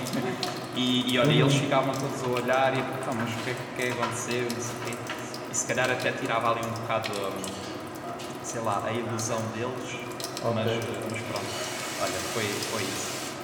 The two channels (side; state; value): both; identical; correlation 1.00